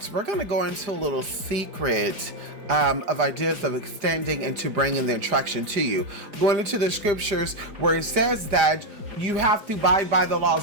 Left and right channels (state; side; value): late; left; 4.9 ms